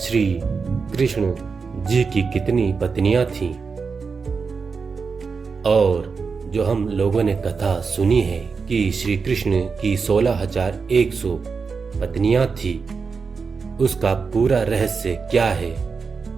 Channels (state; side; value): quieter; left; 5.1 dB